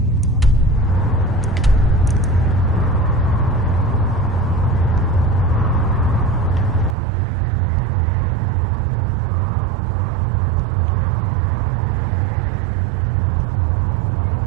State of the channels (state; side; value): drops out; left; at 7.0 s